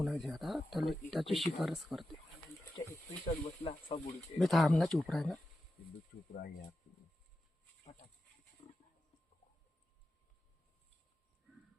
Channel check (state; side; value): normal; both; correlation 0.91